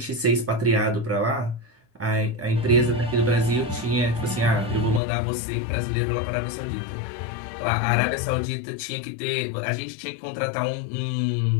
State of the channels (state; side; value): drops out; right; at 5.0 s